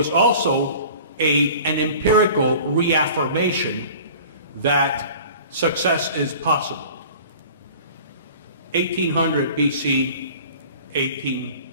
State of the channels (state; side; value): inverted; both; correlation -0.43